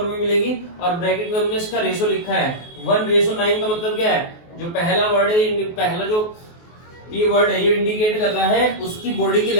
में मिलेगी, और ब्रैकेट में हमने इसका रेशो लिखा है 1:9। का मतलब क्या है, जो पहला वर्ड है, पहला जो पी वर्ड है, ये इंडिकेट कर रहा है उसकी बॉडी की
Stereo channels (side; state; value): right; late; 23 ms